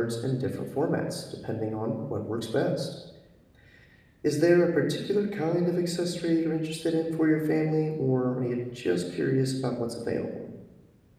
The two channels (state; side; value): identical; both; correlation 1.00